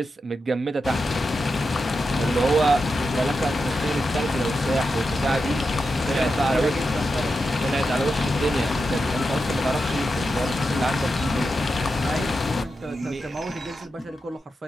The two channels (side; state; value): both; normal; correlation 0.88